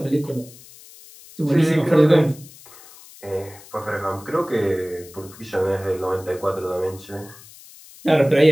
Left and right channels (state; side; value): noise; left; hiss, 21 dB below the sound